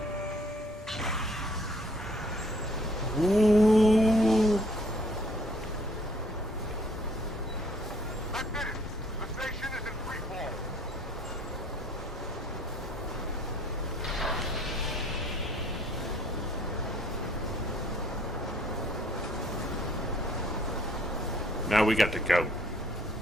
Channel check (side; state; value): both; normal; correlation 0.60